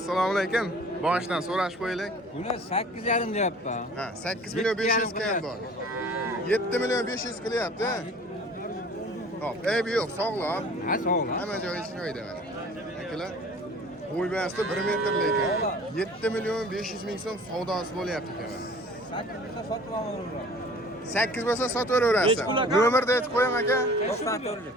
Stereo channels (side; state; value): both; normal; correlation 0.47